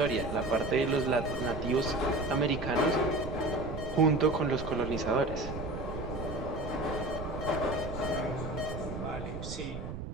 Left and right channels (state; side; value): noise; right; rumble, 8 dB below the sound